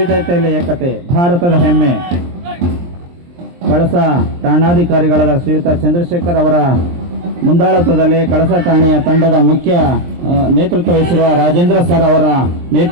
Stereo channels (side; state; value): left; late; 23 ms